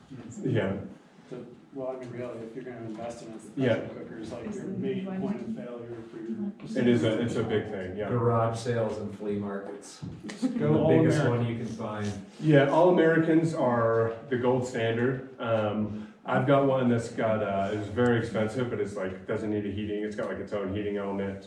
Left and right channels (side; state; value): both; identical; correlation 1.00